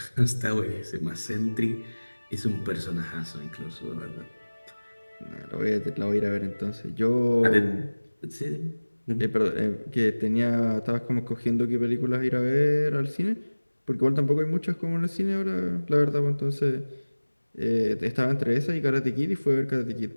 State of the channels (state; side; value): inverted; both; correlation -1.00